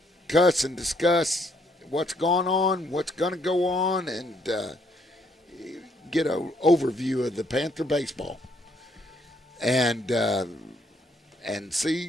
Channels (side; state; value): both; normal; correlation 0.69